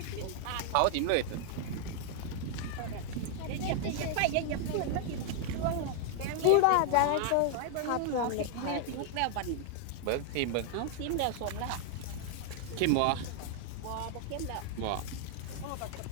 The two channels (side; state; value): both; different; correlation 0.00